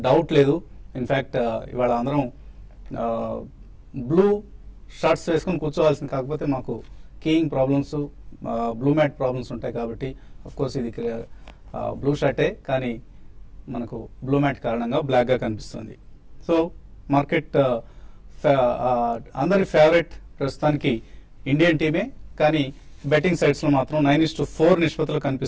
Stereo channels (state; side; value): identical; both; correlation 1.00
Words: డౌట్ లేదు. ఇన్ఫ్యాక్ట్ ఇవాళ అందరం బ్లూ షర్ట్స్ వేసుకొని కూర్చోవాల్సింది, కాకపోతే మాకు keying problems, blue mat problems ఉంటాయి కాబట్టి అఫ్కోర్స్ ఇది బ్లూ షర్టే, కానీ మనకు బ్లూ మ్యాట్ కారణంగా బ్లాక్గా కనిపిస్తుంది. సో మార్కెట్ అందరి ఫేవరెట్ ప్రస్తుతానికి ఇండియన్ టీమే, కానీ బెట్టింగ్ సైట్స్లో మాత్రం 9-4 నిష్పత్తులు